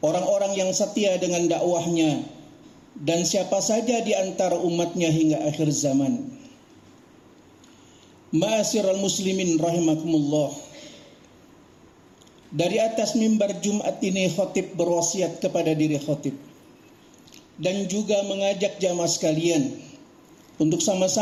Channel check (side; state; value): both; identical; correlation 1.00